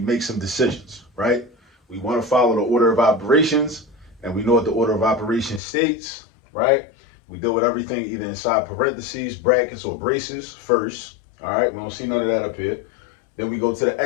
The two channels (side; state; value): right; drops out; at 5.6 s